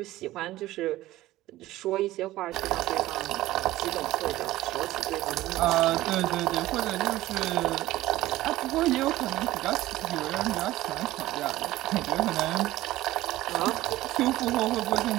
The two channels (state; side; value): quieter; left; 16.2 dB